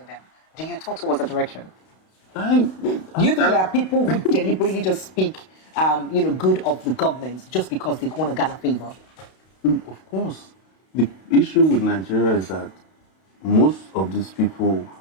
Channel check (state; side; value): late; right; 32 ms